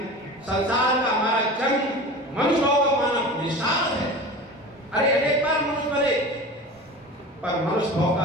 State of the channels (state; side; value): normal; both; correlation 0.34